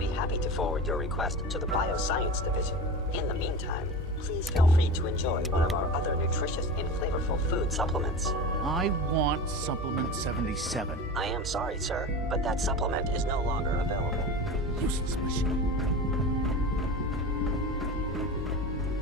happy to forward your request to the Bioscience Division. In the meantime, please feel free to enjoy one of our other nutritious and flavorful food supplements. I want Supplement 77. I am sorry, sir, but that supplement is no longer available. Useless machine.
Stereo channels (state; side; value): normal; both; correlation 0.30